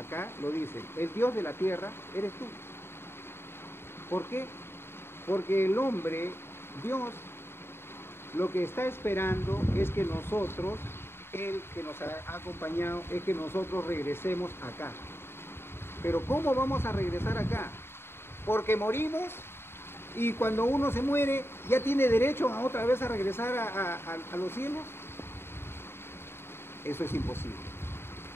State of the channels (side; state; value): right; late; 0.11 ms